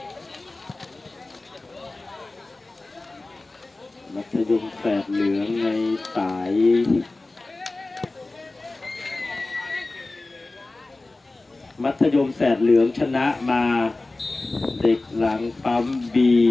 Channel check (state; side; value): quieter; right; 3.1 dB